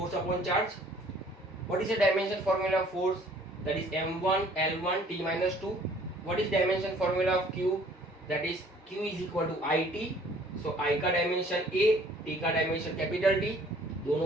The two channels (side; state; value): both; normal; correlation 0.56